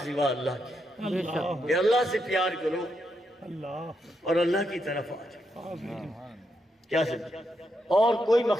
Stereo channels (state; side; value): normal; both; correlation 0.81